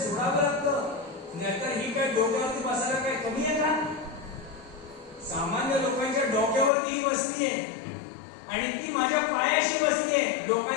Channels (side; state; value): right; drops out; at 6.7 s